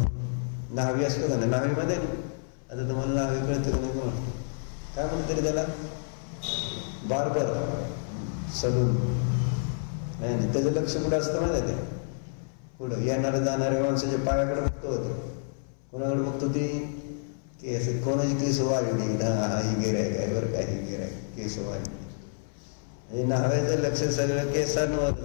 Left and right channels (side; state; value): right; silent; 59 dB below the other